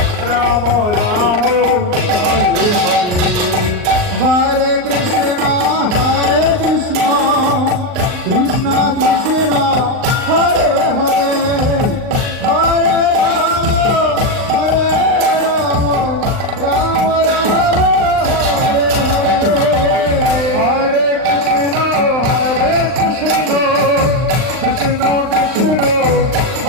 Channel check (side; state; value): left; late; 39 ms